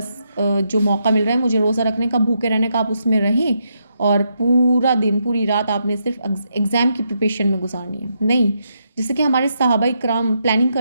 जो मौका मिल रहा है मुझे रोज़ा रखने का, भूखे रहने का, आप उसमें रहें और पूरा दिन पूरी रात आपने सिर्फ एग्ज़ाम की प्रिपरेशन में गुजारनी है। नहीं, जैसे कि हमारे सहाबा इकराम प्लानिंग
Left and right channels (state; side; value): inverted; both; correlation -0.80